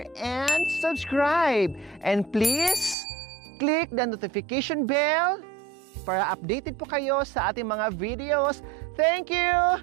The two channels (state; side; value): drops out; left; at 3.0 s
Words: and subscribe. And please, click the notification bell para updated po kayo sa ating mga videos. Thank